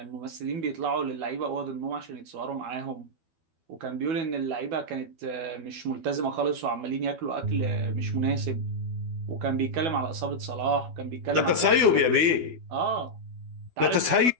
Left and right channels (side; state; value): left; late; 12 ms